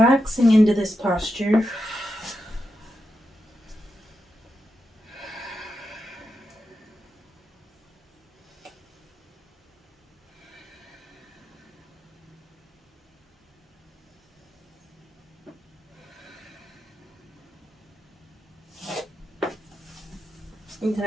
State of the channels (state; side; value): normal; both; correlation 0.87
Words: into this posture. And then